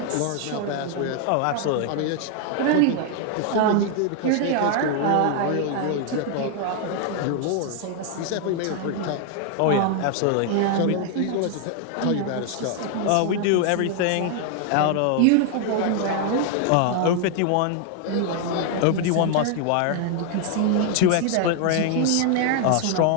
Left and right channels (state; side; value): different; both; correlation 0.00